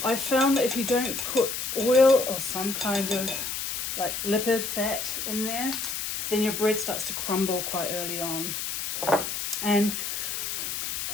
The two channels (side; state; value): left; noise; hiss, 3 dB below the sound